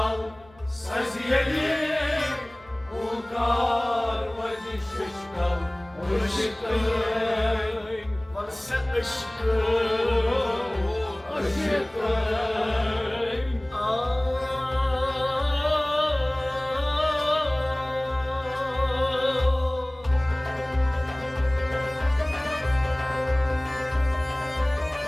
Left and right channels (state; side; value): noise; left; hum, 27 dB below the sound